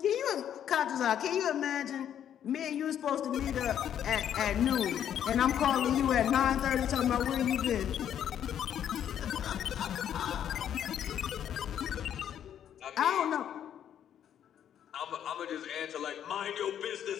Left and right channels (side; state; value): right; quieter; 9.7 dB